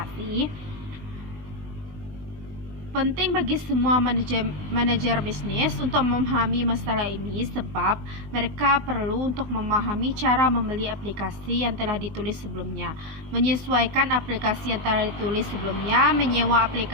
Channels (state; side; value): late; left; 20 ms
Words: Penting bagi semua manajer bisnis untuk memahami masalah ini sebab mereka perlu untuk memahami cara membeli aplikasi yang telah ditulis sebelumnya, menyesuaikan aplikasi yang telah ditulis sebelumnya, menyewa